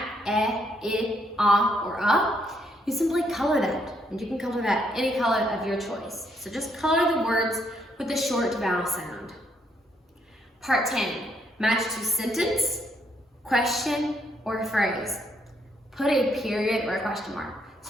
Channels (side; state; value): both; normal; correlation 0.73